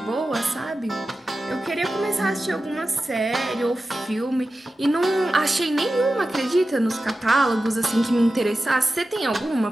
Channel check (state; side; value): normal; both; correlation 0.93